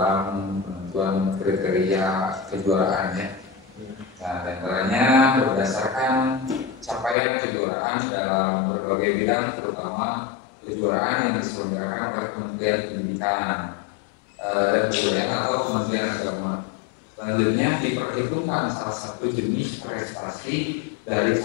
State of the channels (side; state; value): right; drops out; at 7.2 s